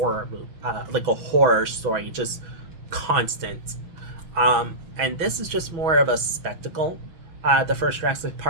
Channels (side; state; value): left; late; 6.1 ms